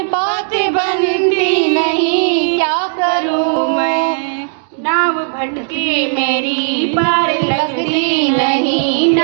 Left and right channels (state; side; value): silent; left; digital silence